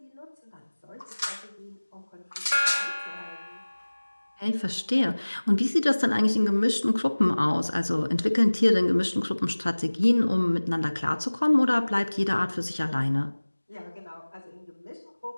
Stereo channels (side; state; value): both; inverted; correlation -1.00